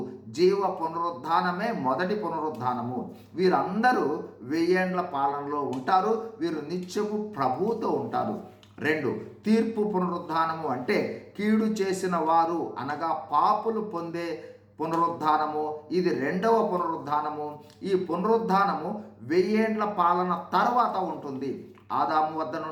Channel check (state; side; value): identical; both; correlation 1.00